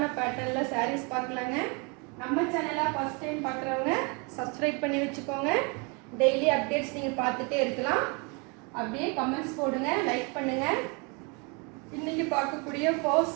பேட்டர்னில் சாரீஸ் பார்க்கலாங்க. நம்ம சேனலை ஃபஸ்ட் டைம் பார்க்குறவங்க சப்ஸ்கிரைப் பண்ணி வச்சுக்கோங்க. டெய்லி அப்டேட்ஸ் நீங்கள் பார்த்துட்டே இருக்கலாம். அப்படியே கமெண்ட்ஸ் போடுங்க, லைக் பண்ணுங்கள். இன்றைக்கி பார்க்கக்கூடிய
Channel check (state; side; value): quieter; left; 32.2 dB